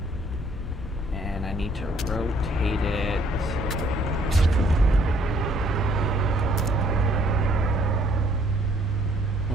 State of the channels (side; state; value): both; normal; correlation 0.63